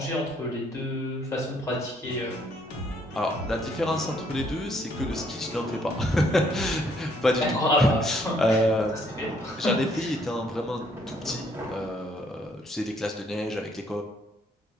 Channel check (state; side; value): normal; both; correlation 0.67